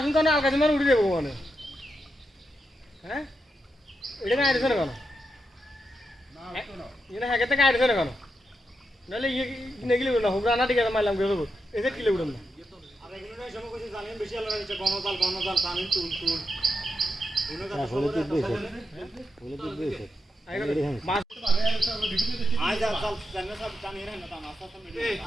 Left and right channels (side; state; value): both; normal; correlation 0.85